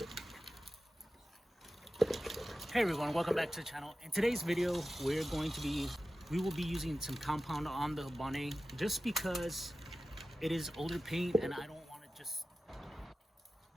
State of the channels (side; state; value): both; normal; correlation 0.94